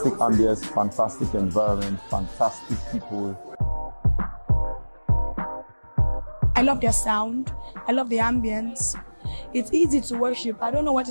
ambience, fantastic environment, fantastic people. I love their sound. I love the ambience. It's easy to worship. I don't know what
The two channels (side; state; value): both; inverted; correlation -1.00